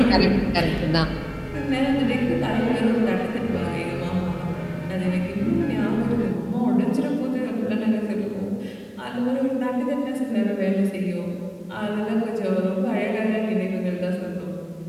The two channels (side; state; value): both; identical; correlation 1.00